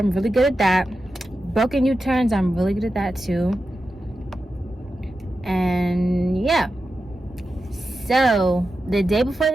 really good at that. Broken U-turns, I'm really good at that too. And yeah, so the day before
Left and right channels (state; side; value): normal; both; correlation 0.91